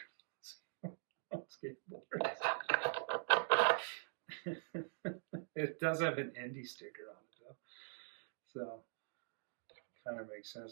on skateboards. It does have an Indy sticker on it though, so it kind of makes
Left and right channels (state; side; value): silent; left; digital silence